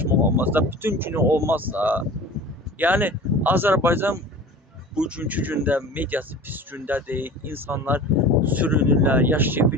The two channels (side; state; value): both; normal; correlation 0.38